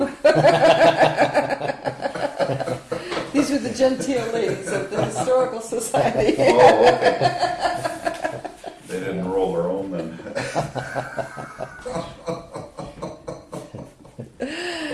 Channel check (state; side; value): identical; both; correlation 1.00